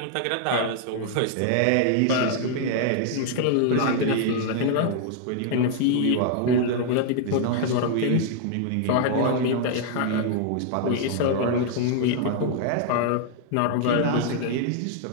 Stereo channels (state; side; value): different; both; correlation 0.00